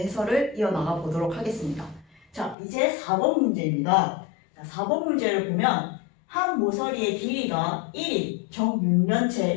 이어나가 보도록 하겠습니다. 자, 이제 4번 문제입니다. 자, 4번 문제를 보면 한 모서리의 길이가 1인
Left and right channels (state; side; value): drops out; right; at 2.6 s